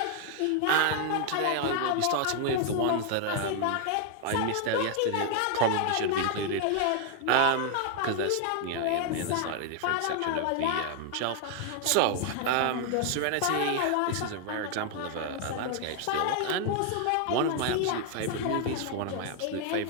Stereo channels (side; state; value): both; different; correlation 0.00